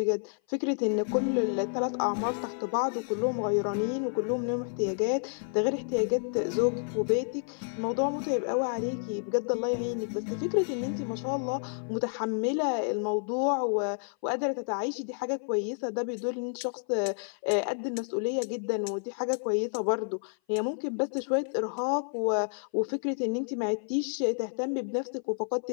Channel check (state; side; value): silent; right; 56 dB below the other